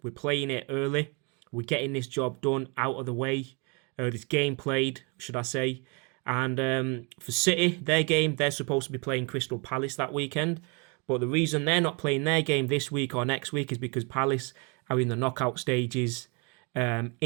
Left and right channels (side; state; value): left; quieter; 31.7 dB